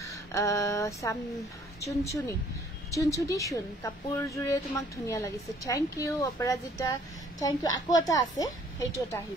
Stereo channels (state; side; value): normal; both; correlation 0.58